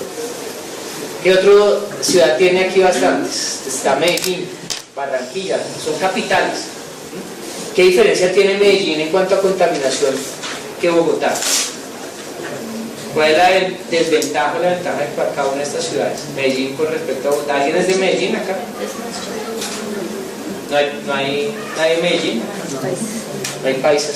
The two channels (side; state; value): both; identical; correlation 1.00